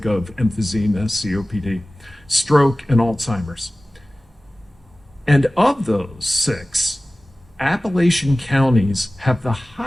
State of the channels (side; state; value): both; normal; correlation 0.97